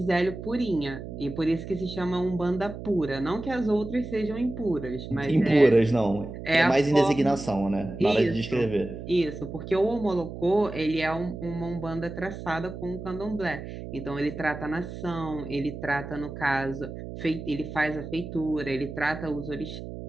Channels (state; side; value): noise; right; hum, 10 dB below the sound